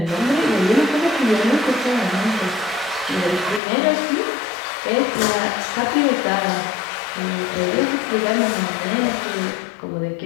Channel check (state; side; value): drops out; right; at 3.6 s